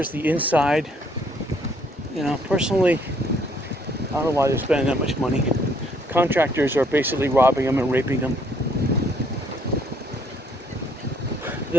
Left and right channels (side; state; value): both; normal; correlation 0.66